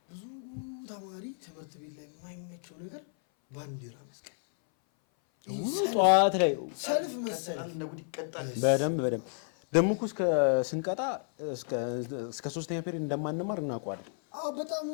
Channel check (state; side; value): silent; right; 57 dB below the other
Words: ብዙ ተማሪ ትምህርት ቤት ላይ የማይመቸው ነገር ባንዲራ መስቀል፣ ጠዋት ላይ ሰልፍ መሰለፍ በደንብ ደግሞ እኮ ስንቀጣ እስከ 3ኛ ፔሪድ እንደማንማር እናውቀዋለን። በጣም